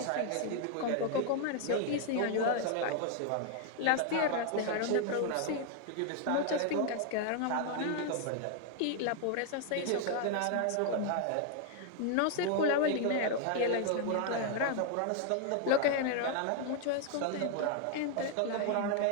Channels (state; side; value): different; both; correlation 0.00